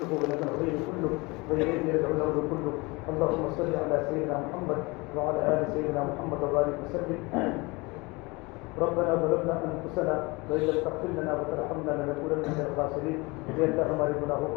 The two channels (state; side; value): quieter; right; 25.2 dB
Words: ولك الخير كله وإليك يرجع الأمر كله. اللهم صل على سيدنا محمد وعلى آل سيدنا محمد وبارك وسلم. ربنا ظلمنا انفسنا وان لم تغفر لنا وترحمنا لنكونن من الخاسرین. اے اللہ ہمارے گناہوں